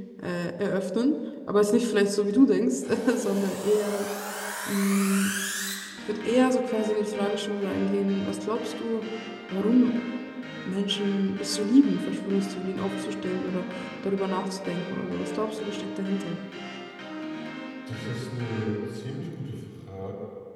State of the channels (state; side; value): identical; both; correlation 1.00